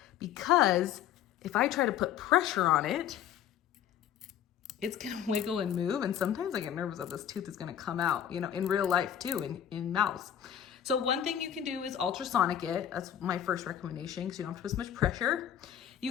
Because if I try to put pressure on it, it's gonna wiggle and move. And sometimes I get nervous that this tooth is gonna come out, you know, in real life too, in mouths. So one thing you can do is ultrasonic it. That's my first recommendation because you don't have to put as much pressure.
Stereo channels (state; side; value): quieter; right; 10.0 dB